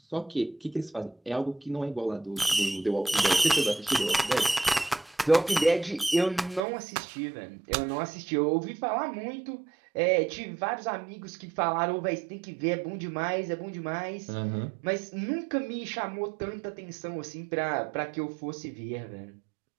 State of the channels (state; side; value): drops out; left; at 6.6 s